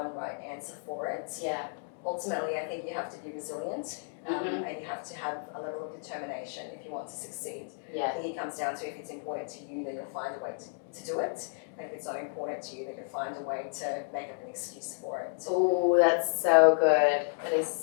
right answer for it. Yeah. Ultimately, I think you have to be resilient and you have to have a level of determination if you want to succeed. Yeah. I think it comes down to if it's important to you, then you'll find a way to do it. And if it's not important to you, then you'll find a way to make up an excuse for it. Oh, that's so good. That is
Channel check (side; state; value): right; silent; 56 dB below the other